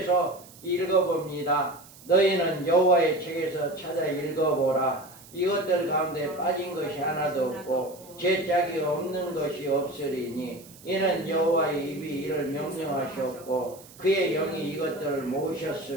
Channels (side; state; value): right; noise; hiss, 21 dB below the sound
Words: 읽어봅니다. 너희는 여호와의 책에서 찾아 읽어보라. 이것들 가운데 빠진 것이 하나도 없고 죄짝이 없는 것이 없으리니 이는 여호와의 입이 이를 명령하셨고 그의 영이 이것들을